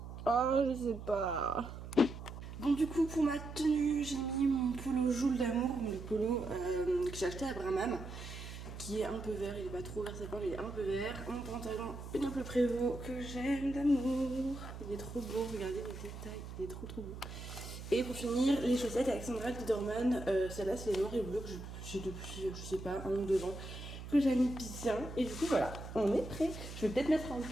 Oh, je sais pas. Bon, du coup, pour ma tenue, j'ai mis mon polo Joule d'amour, le polo que j'ai acheté à Bramham, qui est un peu vert, il est pas trop vert sapin, mais il est un peu vert. Mon pantalon Pénélope Prévost que j'aime d'amour, il est trop beau, regardez les détails, il est trop beau. Et pour finir, les chaussettes Alexandra Liederman, celle-là c'est les noirs et bleus que j'ai depuis, je sais pas, 1 ou 2 ans, que j'aime bien. Et du coup, voilà, on est prêt. Je vais peut-être mettre un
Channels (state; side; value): noise; right; hum, 10 dB below the sound